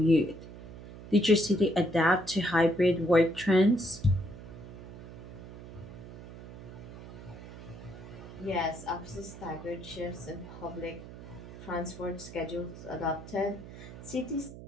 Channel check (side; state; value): right; noise; hum, 14 dB below the sound